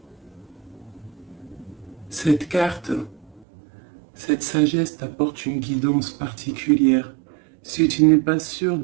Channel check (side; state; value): left; drops out; at 3.5 s